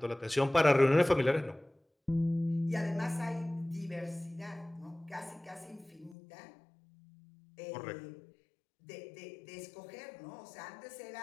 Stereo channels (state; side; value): drops out; right; at 6.2 s